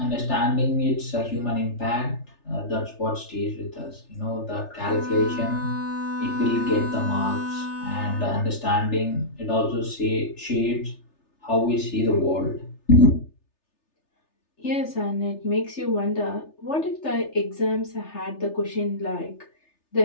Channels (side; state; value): right; late; 3.3 ms